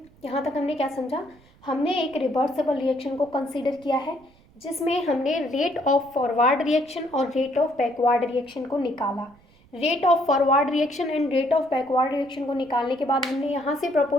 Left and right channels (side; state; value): right; noise; rumble, 29 dB below the sound